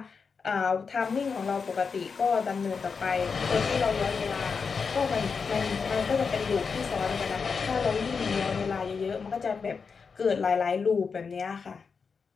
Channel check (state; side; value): quieter; right; 5.4 dB